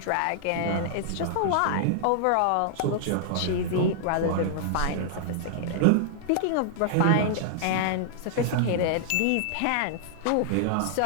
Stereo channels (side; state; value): both; different; correlation -0.01